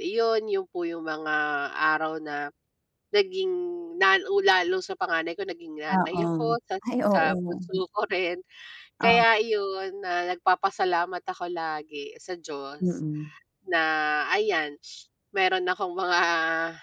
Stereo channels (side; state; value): both; identical; correlation 1.00